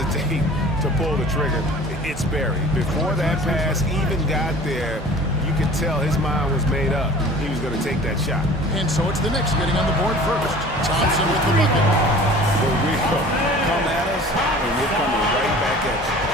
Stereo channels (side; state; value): both; normal; correlation 0.44